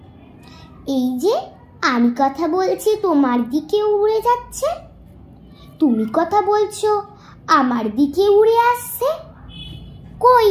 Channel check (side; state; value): both; identical; correlation 1.00